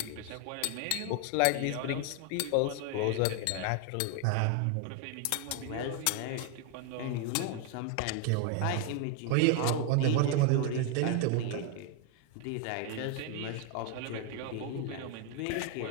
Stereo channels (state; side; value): different; both; correlation 0.00